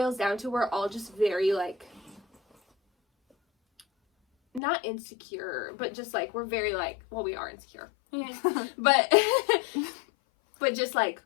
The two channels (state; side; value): drops out; right; at 4.6 s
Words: down to we're all just very like not insecure, but just like we're very like, well, we are insecure. but just like,